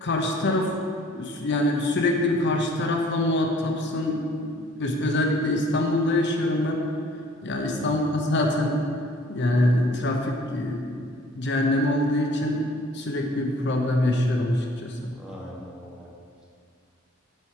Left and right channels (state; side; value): normal; both; correlation 0.55